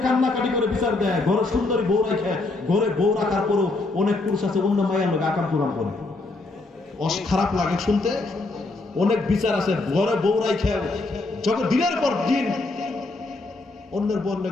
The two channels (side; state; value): right; quieter; 3.2 dB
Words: কান্নাকাটি করে বিচার দেয়। ঘরে সুন্দরী বউ রাখে, ঘরে বউ রাখার পরও অনেক পুরুষ আছে অন্য মায়ের লোক আকাম কুরাম করে, খারাপ লাগে শুনতে। অনেক বিচার আছে, ঘরে বউ রাখে যখন দিনের পর দিন অন্যের বোন